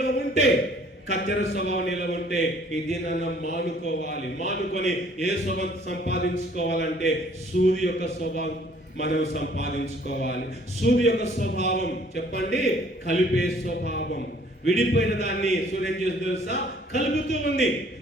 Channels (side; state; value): both; normal; correlation 0.58